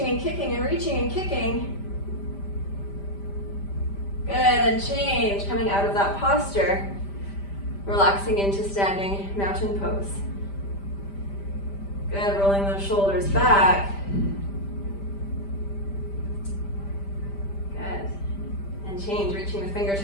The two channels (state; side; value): late; right; 5.1 ms